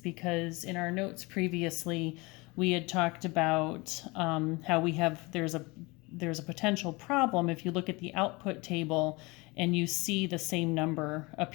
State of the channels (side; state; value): right; quieter; 25.0 dB